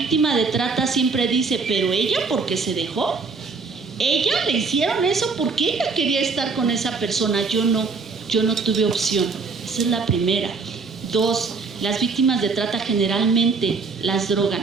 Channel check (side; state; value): left; quieter; 4.6 dB